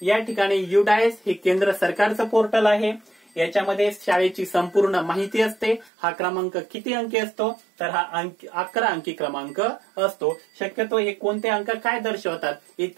या ठिकाणी UDIS हे केंद्र सरकारचं पोर्टल आहे. याच्यामध्ये शाळेची संपूर्ण माहिती असते. हा क्रमांक किती अंकी असतो? तर हा 11 अंकी क्रमांक असतो. शक्यतो हे कोणते अंक काय दर्शवतात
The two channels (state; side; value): drops out; left; at 5.9 s